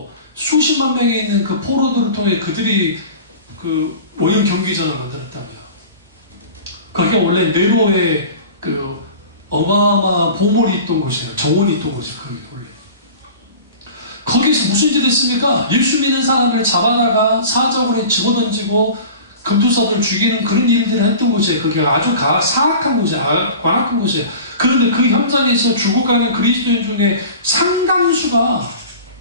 수십만 명이 있는 그 포로들을 통해 그들이 그 오염 경기장을 만들었다고요. 거기가 원래 네로의 그 어마어마한 보물이 있던 곳이에요. 정원이 있던 곳이에요. 거기 원래. 거기서 무슨 짓을 했습니까? 예수 믿는 사람을 잡아다가 사적으로 집어던지고 금투사들 죽이는 그런 일들을 했던 곳이에요. 거기가 아주 사악한 곳이에요. 관악한 곳이에요. 그런데 그 현장에서 죽어가는 그리스도인 중에 상당수가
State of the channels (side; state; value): both; inverted; correlation -0.38